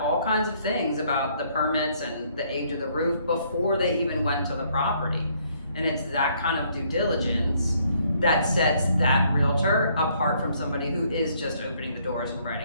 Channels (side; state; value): both; inverted; correlation -0.67